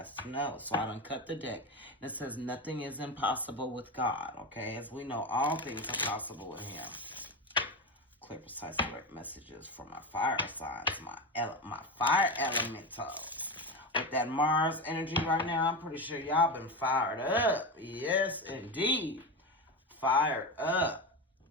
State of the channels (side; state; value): both; normal; correlation 0.19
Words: to know. So I done cut the deck. And it says, nothing is impossible with God, okay? As we know, all things are possible with Him. Clear, precise, correct messages from my fire signs, my fire elementals. With that Mars energy right now, I'm pretty sure y'all been fired up. Yes, indeed. Fired up.